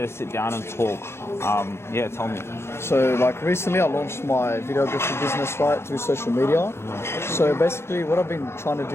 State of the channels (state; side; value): late; right; 0.12 ms